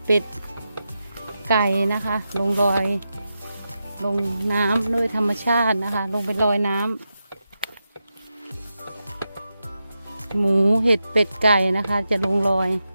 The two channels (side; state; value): both; inverted; correlation -0.89